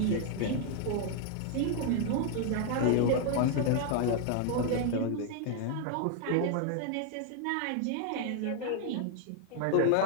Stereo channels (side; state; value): both; different; correlation 0.00